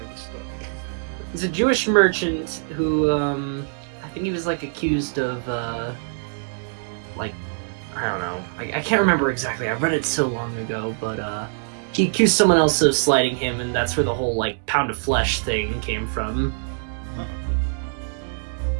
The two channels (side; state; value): left; silent; digital silence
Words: this story. He's a Jewish merchant who, I think he was like accused of, like, I don't know. I can't remember exactly. I read it so long ago, but he accused someone else of slighting him, and that's where the whole like pound of flesh thing came from.